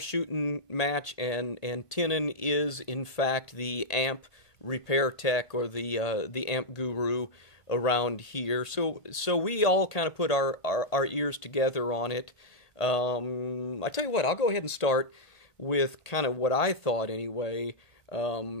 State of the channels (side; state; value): right; late; 1.5 ms